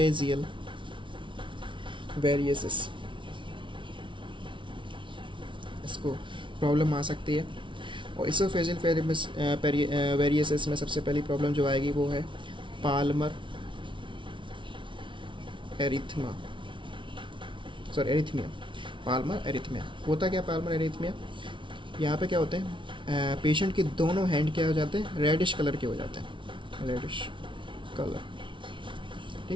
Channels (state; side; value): late; left; 0.24 ms